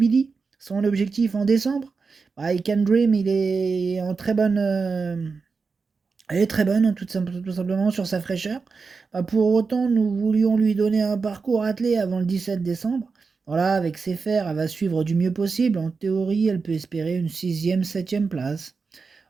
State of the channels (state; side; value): quieter; left; 4.7 dB